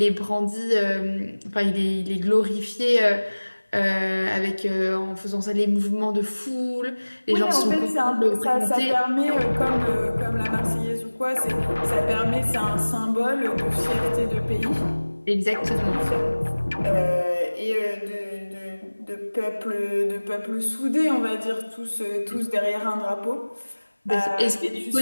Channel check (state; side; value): inverted; both; correlation -1.00